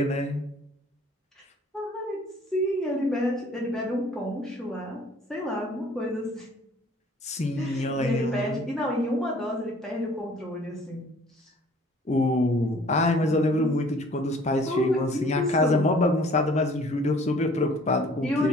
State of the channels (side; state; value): both; normal; correlation 0.54